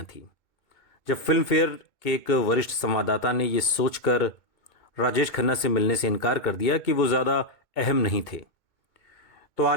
थी। जब फिल्म फेयर के एक वरिष्ठ संवाददाता ने यह सोचकर राजेश खन्ना से मिलने से इनकार कर दिया कि वो ज़्यादा अहम नहीं थे, तो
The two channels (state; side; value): late; right; 2.2 ms